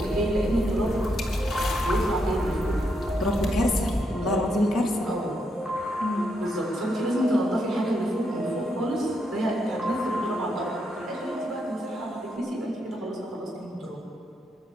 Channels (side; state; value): both; normal; correlation 0.79